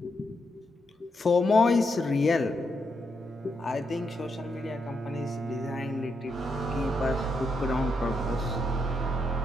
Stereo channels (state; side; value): normal; both; correlation 0.81